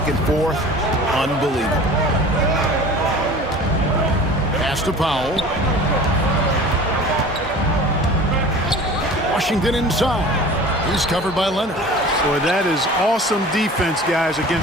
and forth, unbelievable. Pass to Powell. Washington inside. He's covered by Leonard. Boy, that is awesome defense, guys,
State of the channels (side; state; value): both; normal; correlation 0.41